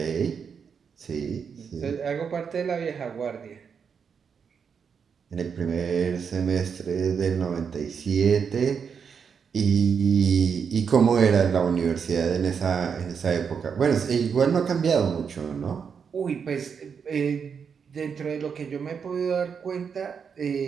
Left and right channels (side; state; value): left; quieter; 6.5 dB